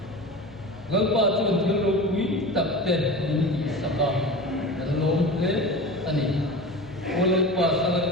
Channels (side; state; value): both; normal; correlation 0.31